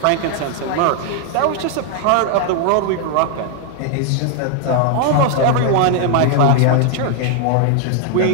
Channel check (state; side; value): different; both; correlation 0.00